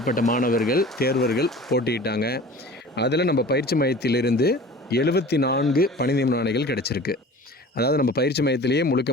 மாணவர்கள் தேர்வர்கள் போட்டியிட்டாங்க. அதில் நம்ம பயிற்சி மையத்திலிருந்து 74 பணி நியமன ஆணைகள் கிடச்சிருக்கு. அதாவது நம்ம பயிற்சி மையத்திலேயே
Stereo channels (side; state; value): both; normal; correlation 0.41